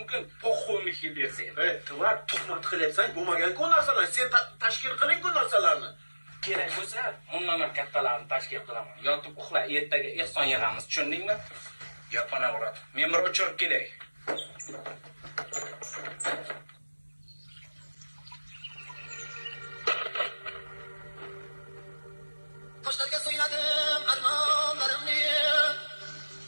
Po'xo'y yil bersa. Tuvar tuhmat qilyapsan, bo'lmagan-ku narsalar. Sen tashkil qiling-ku narsalarni. Kerak bo'lsa, bundan ham kattalarni tashkil qilaman. Yotib uxla, ertaga ehson yig'amiz, tushundingmi? Yapana uradi. Men bir o'chirib kelay. Toshlarga so'yladim armonlarimni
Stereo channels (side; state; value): both; inverted; correlation -1.00